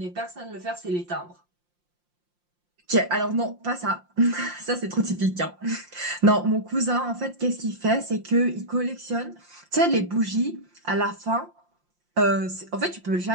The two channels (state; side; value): late; left; 5.7 ms